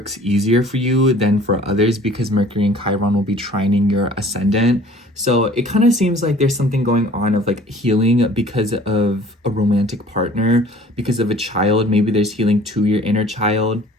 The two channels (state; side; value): normal; both; correlation 0.50